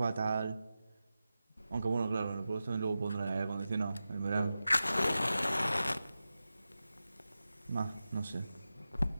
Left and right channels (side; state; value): both; inverted; correlation -0.93